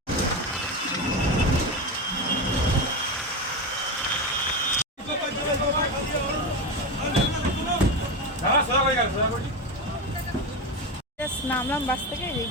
নামলাম বাস থেকে,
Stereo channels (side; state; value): both; normal; correlation 0.18